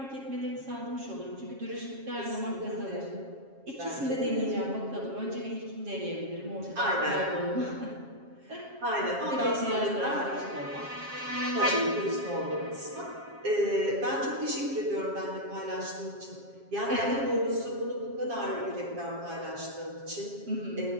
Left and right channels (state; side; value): late; left; 7.4 ms